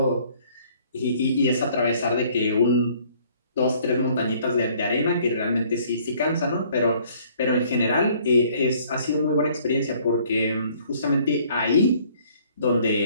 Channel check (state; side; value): inverted; both; correlation -0.59